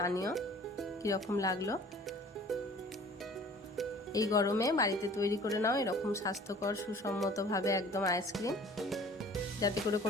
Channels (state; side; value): normal; both; correlation 0.48